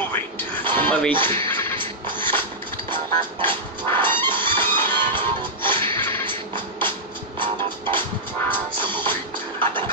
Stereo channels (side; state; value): both; normal; correlation -0.08